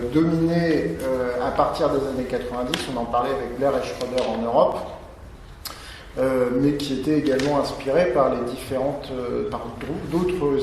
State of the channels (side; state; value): both; identical; correlation 1.00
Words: dominé à partir des années 90, on en parlait avec Blair et Schroeder en Europe, mais qui étaient également inspirés par par